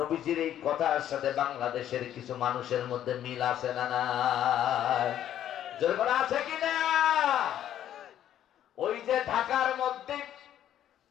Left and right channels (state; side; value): quieter; right; 11.1 dB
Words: এই কথার সাথে বাংলাদেশের কিছু মানুষের মধ্যে মিল আছে না নাই? যেরকম আছে কিনা? ওই যে ঢাকার মধ্যে